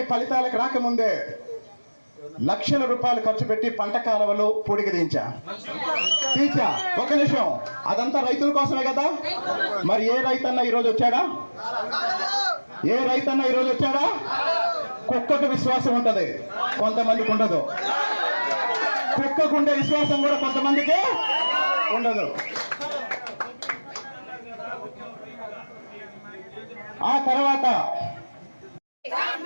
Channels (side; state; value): both; inverted; correlation -1.00